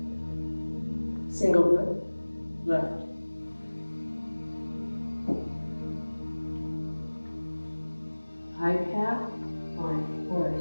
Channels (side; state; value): both; inverted; correlation -1.00